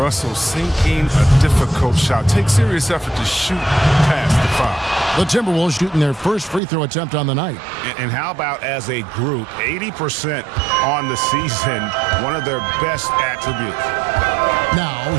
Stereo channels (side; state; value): left; drops out; at 6.6 s